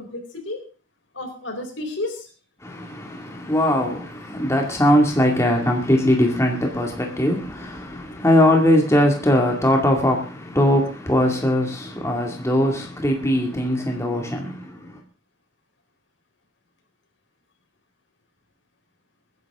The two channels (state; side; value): normal; both; correlation 0.69